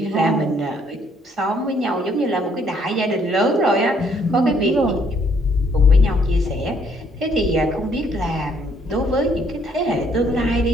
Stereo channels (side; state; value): both; normal; correlation 0.67